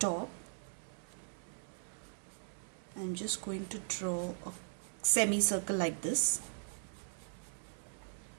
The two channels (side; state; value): left; silent; 52 dB below the other